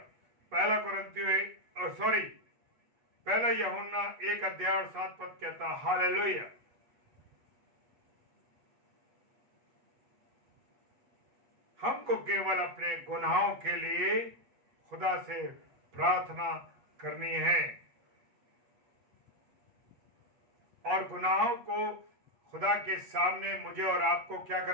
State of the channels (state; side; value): late; left; 8.3 ms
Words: पहला यूहन्ना 1 अध्याय और 7 पद कहता है, हालेलुया। हमको केवल अपने गुनाहों के लिए खुदा से प्रार्थना करनी है, और गुनाहों को खुदा के सामने मुझे और आपको क्या